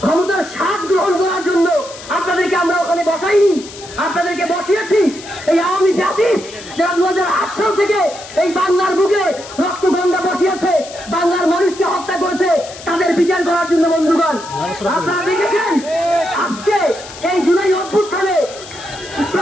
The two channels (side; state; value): left; noise; hiss, 16 dB below the sound